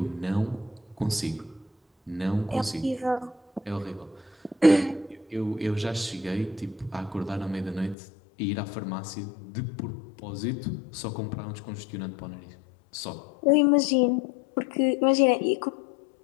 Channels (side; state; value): right; drops out; at 8.0 s